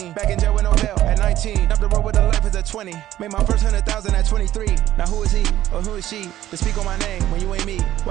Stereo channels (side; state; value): left; quieter; 13.3 dB